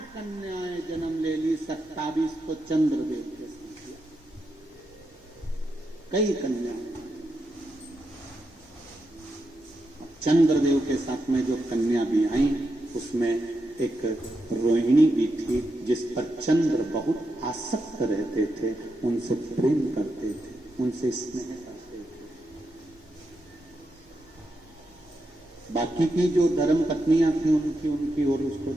कन्याएं जन्म ले ली, 27 तो चंद्रदेव के साथ किया, कई कन्याएं। चंद्रदेव के साथ में जो कन्या भी आई, उसमें एक रोहिणी भी थी, जिस पर चंद्र बहुत आसक्त रहते थे, उनसे प्रेम करते थे, उनसे स्नेह करते थे। बाकी की जो धर्म पत्नियां थी उनकी और उसको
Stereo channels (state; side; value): normal; both; correlation 0.85